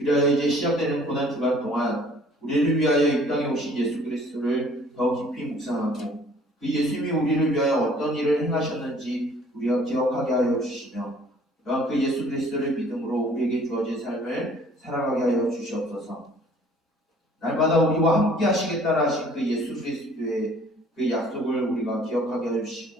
이제 시작되는 고난 주간 동안 우리를 위하여 이 땅에 오신 예수 그리스도를 더 깊이 묵상하고 그 예수님이 우리를 위하여 어떤 일을 행하셨는지 우리가 기억하게 하여 주시며 또한 그 예수 그리스도를 믿음으로 우리에게 주어진 삶을 살아가게 하여 주시옵소서. 날마다 우리와 함께 하시겠다라 하신 그 예수 그리스도의 그 약속을 우리가 기억하게 하여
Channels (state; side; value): normal; both; correlation 0.55